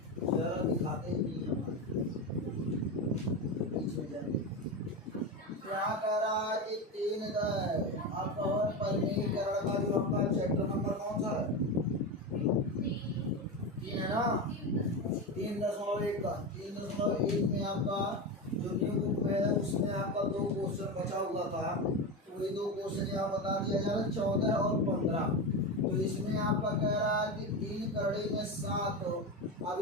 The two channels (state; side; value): normal; both; correlation 0.18